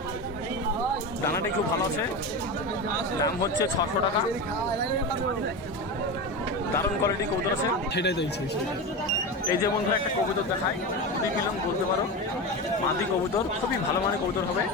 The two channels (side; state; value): both; normal; correlation 0.22